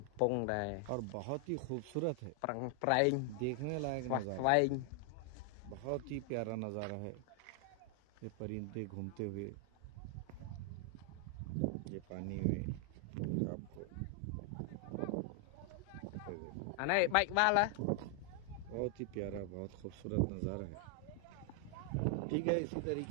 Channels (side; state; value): both; different; correlation 0.00